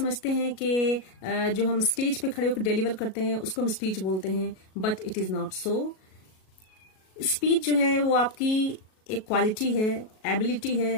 हैं कि जो हम स्टेज पे खड़े होकर डिलीवर करते हैं उसको हम स्पीच बोलते हैं, but it is not so. Speech जो है वो आपकी एक क्वालिटी है, एबिलिटी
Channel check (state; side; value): late; right; 37 ms